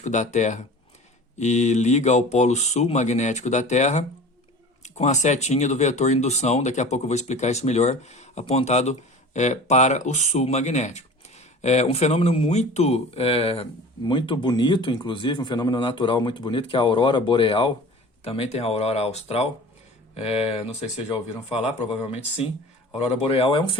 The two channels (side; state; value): both; normal; correlation 0.39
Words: da Terra e liga ao polo sul magnético da Terra com a setinha do vetor indução, daqui a pouco eu vou explicar isso melhor, apontado para o sul magnético. Um fenômeno muito bonito, inclusive, um fenômeno natural muito bonito, que é a aurora boreal, também tem a aurora austral, não sei se vocês já ouviram falar, provavelmente sim. A aurora boreal é um